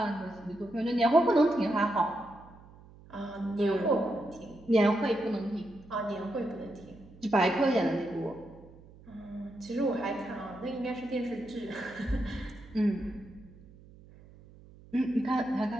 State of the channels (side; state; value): right; noise; hum, 22 dB below the sound